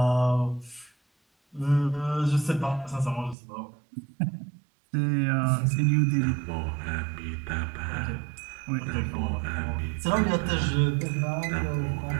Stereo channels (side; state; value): left; drops out; at 3.4 s